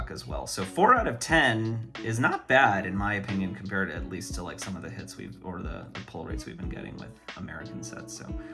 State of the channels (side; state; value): both; identical; correlation 1.00